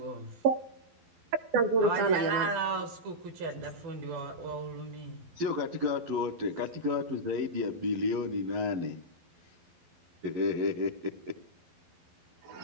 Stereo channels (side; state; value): left; late; 12 ms